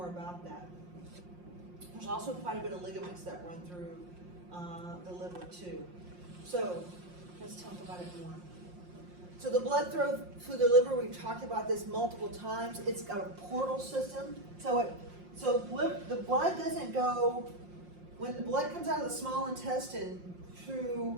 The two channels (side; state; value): left; late; 5.6 ms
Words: about that. There's also quite a bit of ligaments that run through the liver too. So let's talk about it more. So the blood flow through the liver, we've talked about this multiple times. It's got a portal system. So the blood doesn't go, when the blood comes out of the small intestine